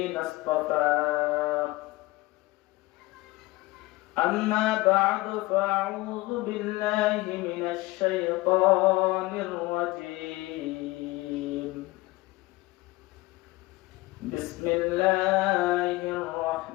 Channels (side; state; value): right; quieter; 20.3 dB